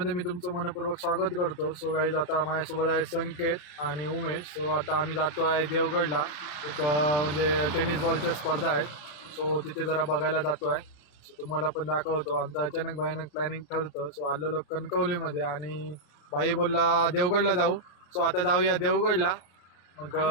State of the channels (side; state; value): right; late; 34 ms